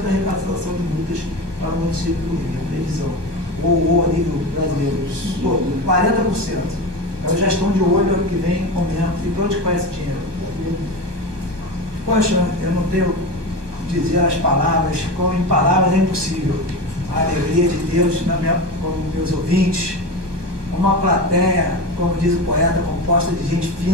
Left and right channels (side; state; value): left; late; 1.2 ms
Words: da arrecadação de multas para o município do Rio, a previsão, ou a nível brasileiro, todo, 40%. Então já estão de olho ano que vem aumento. E para onde vai esse dinheiro? Poxa, eu não tenho que dizer as palavras, como em palavras é impossível. A alegria de Deus como meus ouvintes, uma plateia, como diz o poeta, composta de gente